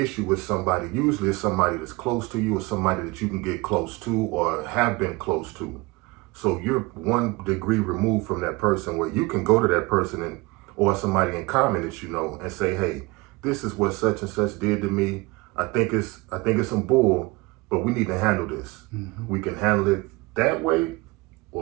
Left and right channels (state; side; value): quieter; left; 23.9 dB